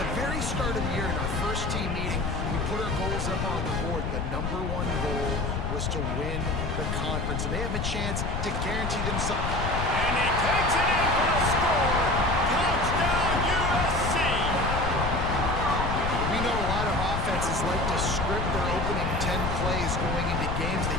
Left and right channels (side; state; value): left; noise; rumble, 2 dB below the sound